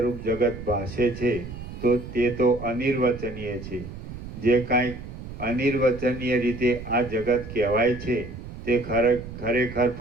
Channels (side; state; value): right; noise; rumble, 11 dB below the sound